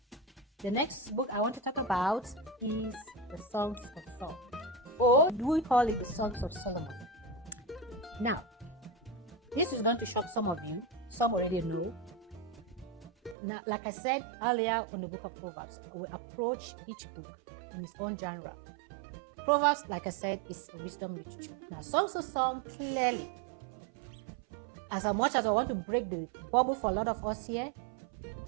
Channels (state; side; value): drops out; left; at 13.4 s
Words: the next book I want to talk about is the Songs of Songs, or do we call it the Songs of Solomon? Now, this is going to shock some of you. Some already know. Now, like I said earlier in the book of Proverbs, we approach each book in its own genre. Proverbs, like I said, is wisdom literature. Now, Songs of Songs, clearly, as much as I want to break the bubble for a lot of us here,